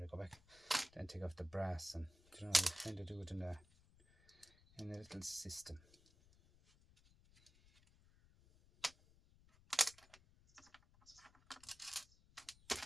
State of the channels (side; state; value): left; noise; rumble, 26 dB below the sound